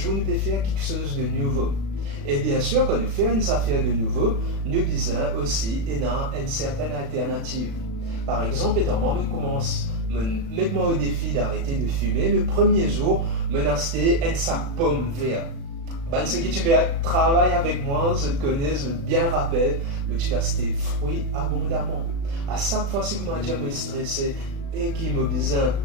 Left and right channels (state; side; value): late; left; 36 ms